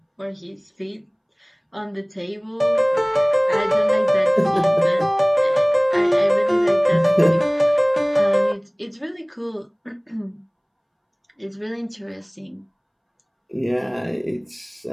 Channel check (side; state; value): both; identical; correlation 1.00